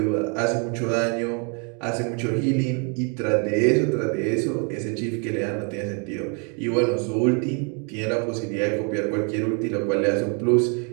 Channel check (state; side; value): quieter; left; 37.0 dB